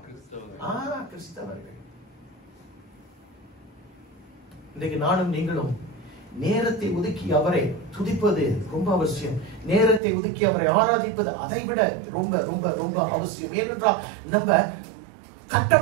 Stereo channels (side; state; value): left; drops out; at 10.0 s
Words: கிறிஸ்தவர்கள். இன்றைக்கு நானும் நீங்களும் நேரத்தை ஒதுக்கி அவரை துதிப்பது ரொம்ப அவசியம். நேரத்தை ஒதுக்கி அவரை ஆராதிப்பது அதை விட ரொம்ப ரொம்ப ரொம்ப அவசியம். ஏனென்றால் நம்ம